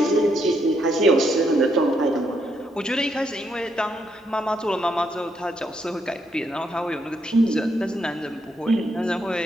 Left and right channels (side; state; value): both; normal; correlation 0.77